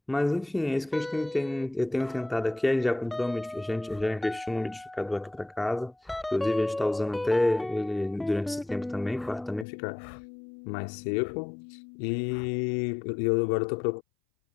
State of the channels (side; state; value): right; drops out; at 9.7 s